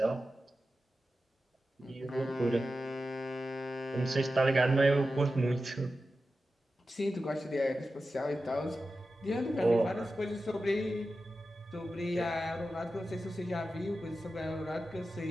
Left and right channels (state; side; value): normal; both; correlation 0.92